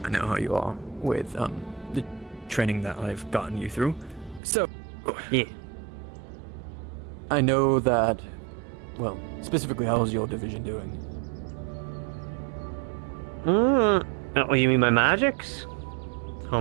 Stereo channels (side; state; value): left; drops out; at 4.4 s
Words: I know how you are with the training that I've gotten you through. So, yeah. I know that, specifically, how's your division doing? Oh, you mean my magics? How